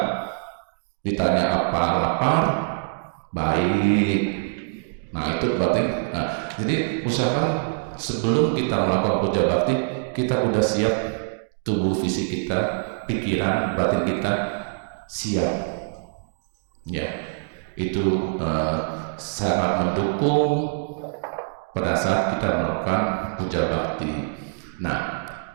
Ditanya apa, lapar, baik. Nah, itu berarti. Jadi usahakan sebelum kita melakukan puja bakti, kita udah siap. Tubuh fisik kita, pikiran, batin kita siap. Ya, itu sangat mendukung pada saat kita melakukan puja bakti. Nah,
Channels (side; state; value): left; silent; digital silence